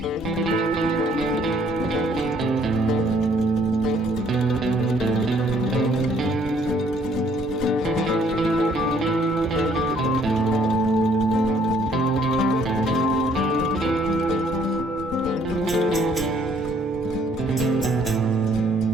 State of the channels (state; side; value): normal; both; correlation 0.63